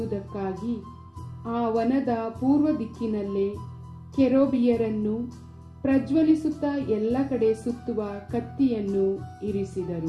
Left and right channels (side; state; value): both; identical; correlation 1.00